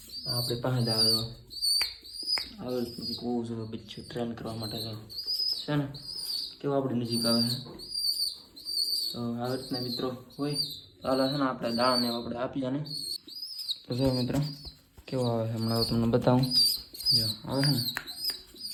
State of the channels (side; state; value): both; identical; correlation 1.00